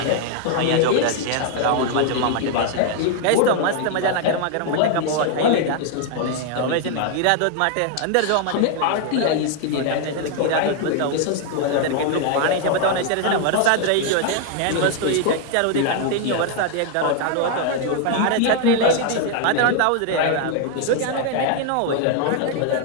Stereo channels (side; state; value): both; different; correlation 0.00